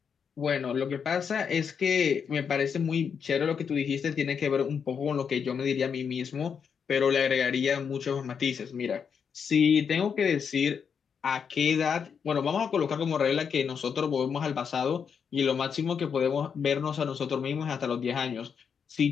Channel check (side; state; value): right; quieter; 6.8 dB